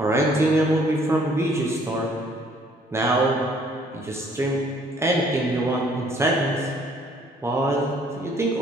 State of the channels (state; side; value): normal; both; correlation 0.61